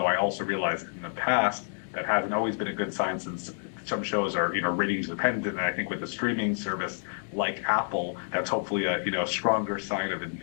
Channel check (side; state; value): right; silent; 59 dB below the other